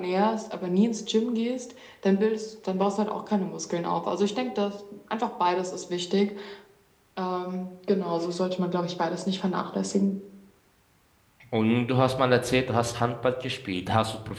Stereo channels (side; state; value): both; identical; correlation 1.00